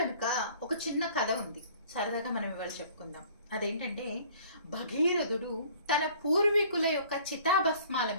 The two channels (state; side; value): inverted; both; correlation -0.52